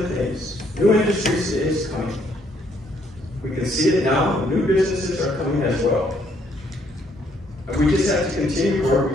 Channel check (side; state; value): both; normal; correlation 0.69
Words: things. New industries is coming. We can see it now. New businesses are coming as well. We just have to continue where